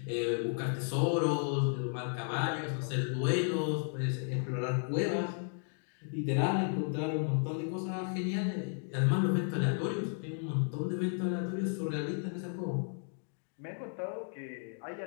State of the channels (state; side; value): silent; right; 55 dB below the other